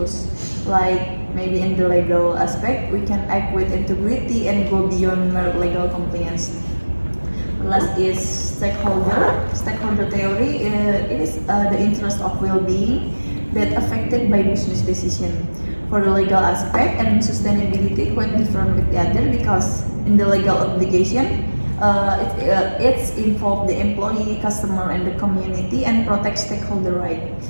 Like maybe in the legal aspect, we can act with integrity and go beyond mere legal compliance. Last is stakeholder theory. It is the interest of well-being that affected by business decision. For the legal aspect and sustainability, quite different with the other, because in the legal obligation, it's involve the employee, customer, and the community, and protect stakeholder right.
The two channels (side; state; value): both; inverted; correlation -1.00